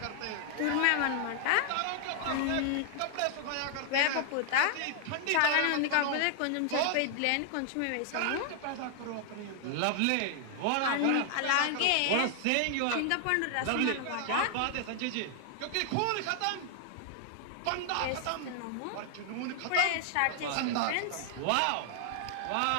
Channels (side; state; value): both; different; correlation 0.00